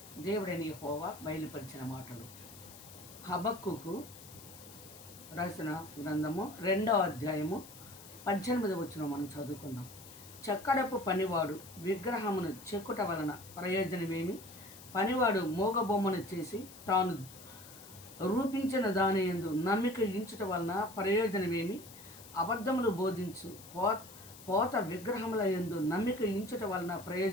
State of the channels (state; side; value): noise; left; hiss, 18 dB below the sound